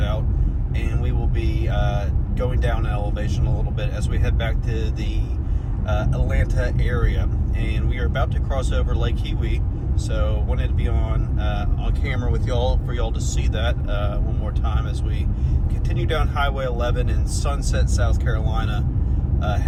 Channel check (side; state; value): both; identical; correlation 1.00